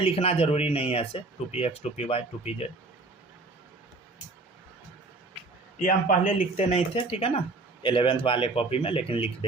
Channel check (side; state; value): left; quieter; 3.4 dB